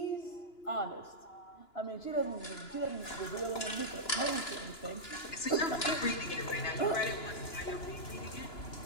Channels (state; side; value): late; right; 2.9 ms